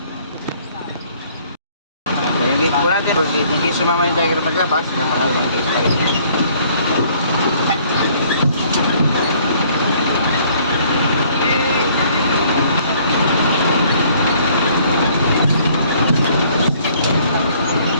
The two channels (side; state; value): both; inverted; correlation -0.60